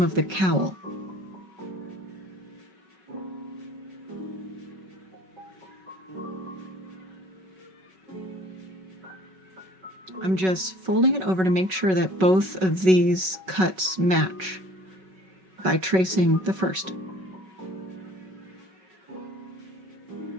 the cowl. I'm just folding it over to make sure that both of these cuts match by tracing the first.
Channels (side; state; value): left; late; 5.3 ms